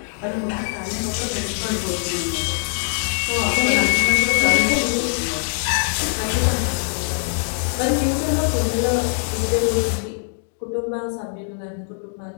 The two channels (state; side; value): silent; right; digital silence